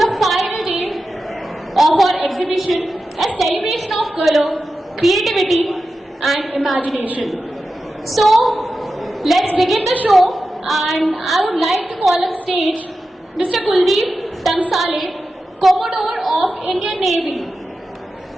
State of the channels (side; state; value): both; normal; correlation 0.92